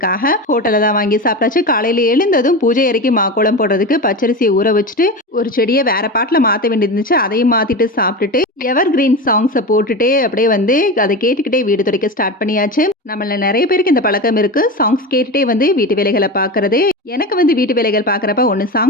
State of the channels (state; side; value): normal; both; correlation 0.24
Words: ஹோட்டல்ல தான் வாங்கி சாப்பிட்டாச்சு. காலையில எழுந்ததும் பூஜை அறைக்கு மாக்கோலம் போடுறதுக்கு பச்சரிசிய ஊற வச்சுட்டு, ஒரு செடிய வேற பாட்டுல மாத்த வேண்டியது இருந்துச்சு. அதையும் மாத்திட்டு சாப்பிட்டுட்டு, எவர் கிரீன் சாங்ஸ போட்டுட்டே அப்படியே அத கேட்டுக்கிட்டே வீடு துடைக்க ஸ்டார்ட் பண்ணியாச்சு. நம்மள நெறைய பேருக்கு இந்த பழக்கம் இருக்கு. சாங்ஸ் கேட்டுட்டே வீட்டு வேலைகள பார்க்கறது. எனக்கு வீட்டு வேலைகள் பார்க்குறப்ப ஒண்ணு